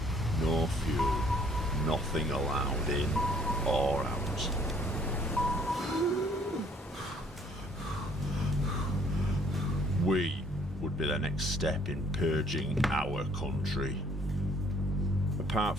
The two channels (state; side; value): normal; both; correlation 0.60